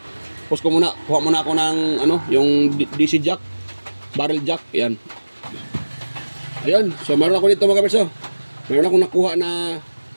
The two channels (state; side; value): inverted; both; correlation -1.00